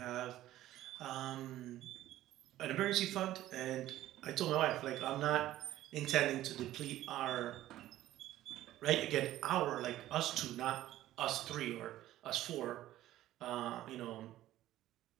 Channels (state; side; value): quieter; left; 14.3 dB